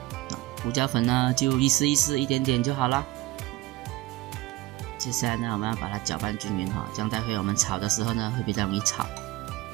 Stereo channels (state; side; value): quieter; left; 18.4 dB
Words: 胡椒粉呢就意思一点点就好了。接下来呢，我们要把它搅拌均匀哈，这样待会我们炒的时候呢会比较容易炒。